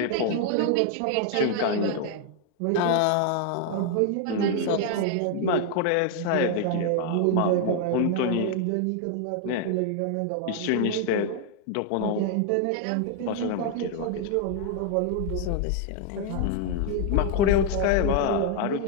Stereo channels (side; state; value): both; different; correlation 0.00